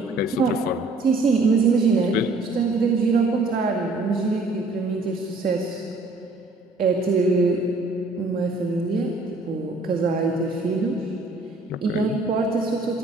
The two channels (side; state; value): left; quieter; 3.1 dB